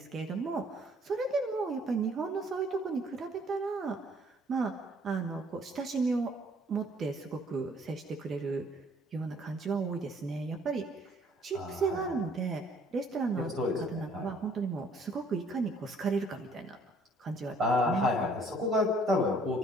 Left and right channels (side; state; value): both; normal; correlation 0.60